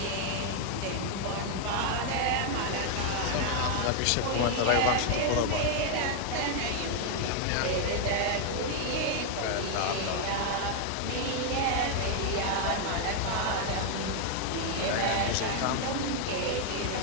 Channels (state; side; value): different; both; correlation 0.00